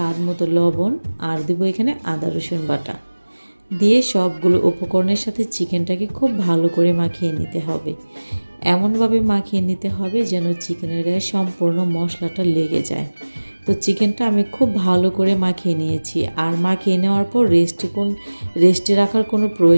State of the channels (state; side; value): inverted; both; correlation -1.00